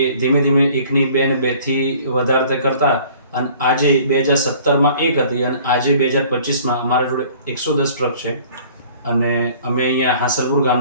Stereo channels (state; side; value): inverted; both; correlation -0.52